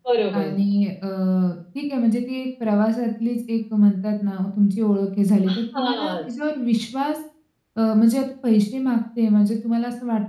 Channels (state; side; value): identical; both; correlation 1.00